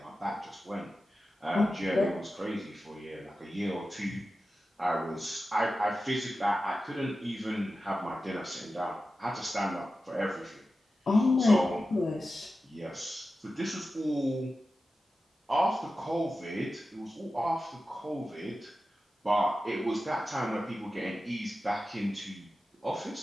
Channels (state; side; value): normal; both; correlation 0.93